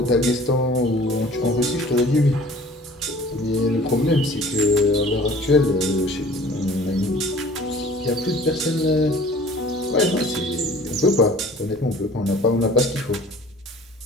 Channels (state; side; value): normal; both; correlation 0.48